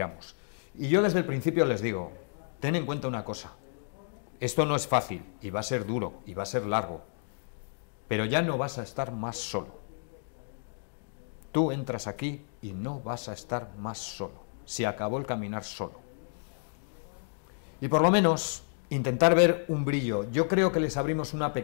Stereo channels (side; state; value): right; silent; digital silence